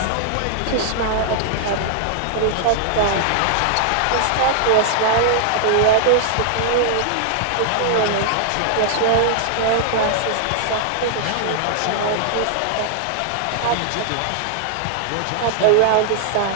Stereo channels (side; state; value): both; different; correlation -0.01